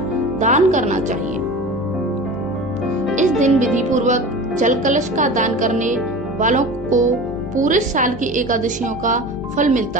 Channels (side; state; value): both; normal; correlation 0.34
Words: दान करना चाहिए। इस दिन विधि पूर्वक जल कलश का दान करने वालों को पूरे साल की एकादशियों का फल